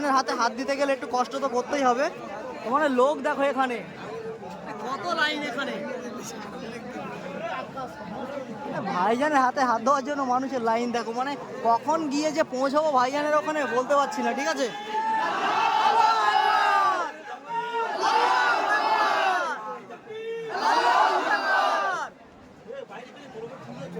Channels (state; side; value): identical; both; correlation 1.00